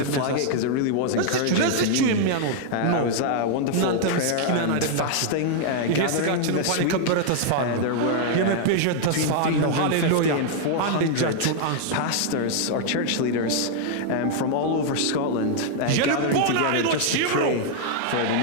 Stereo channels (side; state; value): both; different; correlation 0.00